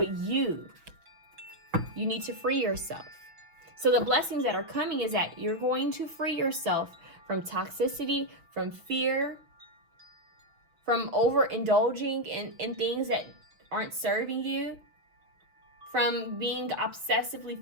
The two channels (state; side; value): late; left; 6.1 ms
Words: you. You need to free yourself. So the blessings that are coming is that you're going to free yourself from toxicity, from fear, from overindulging in things that aren't serving you, from being obsessively